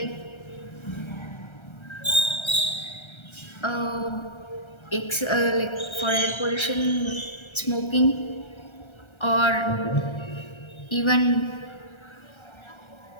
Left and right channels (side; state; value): right; late; 1.3 ms